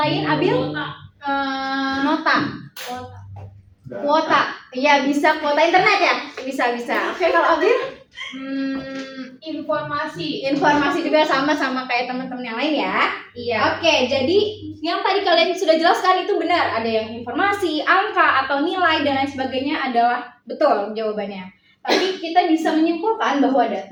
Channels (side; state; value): both; identical; correlation 1.00